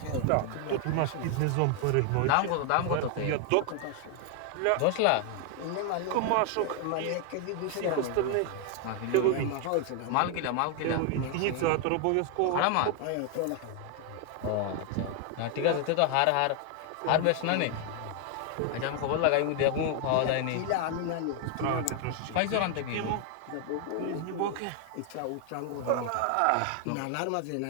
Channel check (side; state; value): both; different; correlation 0.00